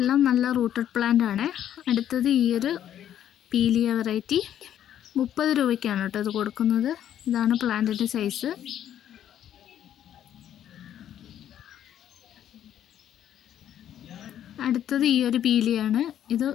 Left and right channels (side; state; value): right; quieter; 10.6 dB